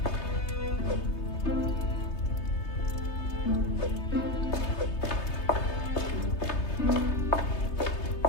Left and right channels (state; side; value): late; right; 3.3 ms